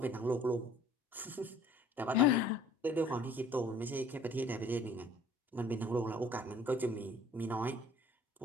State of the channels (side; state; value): both; normal; correlation 0.53